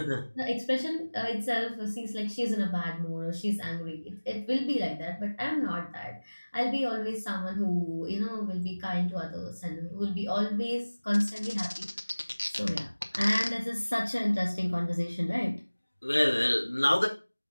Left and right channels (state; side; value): inverted; both; correlation -1.00